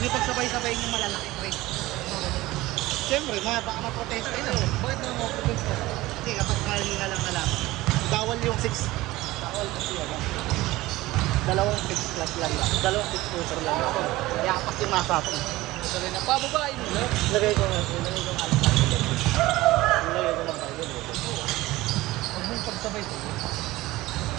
niyo pagsabay-sabay yung malalaki pre. Siyempre, baka ma-protesta yun eh. Bakit naman mo protest ka? Kasi kapag kalinga lang na lang, bawal yung 6. Bawal kasi yan. Dalawang 6 plus lang lang. Dalawang 6 footer lang ako. Yapak yung nasa ako. Sabi na, pababain mo lang. Lagay ko nga. Lagay ko nga. Lagay ko lang tayo. Huwag mong pagsabay sa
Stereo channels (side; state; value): left; quieter; 18.4 dB